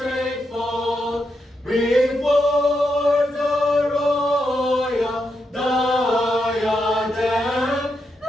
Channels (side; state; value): both; normal; correlation 0.83